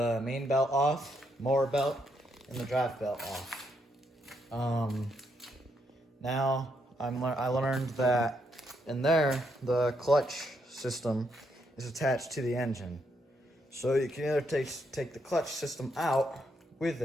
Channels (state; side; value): normal; both; correlation 0.77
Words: main belt off, motor belt, and the drive belt off. Now I learned that in there the clutch system is attached to the engine. So you can either take the clutch system out with